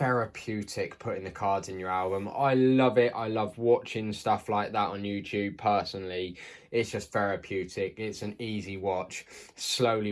putting the cards in your album. I love it. I love watching stuff like that on YouTube personally. It's just therapeutic. It's an easy watch. Slowly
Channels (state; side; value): identical; both; correlation 1.00